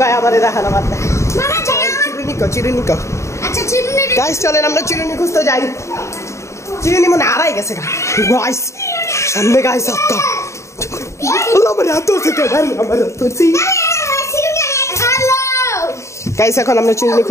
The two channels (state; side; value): late; right; 0.14 ms